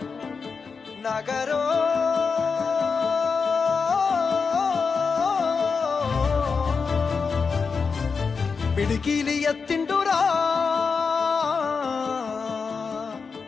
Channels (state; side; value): quieter; right; 5.2 dB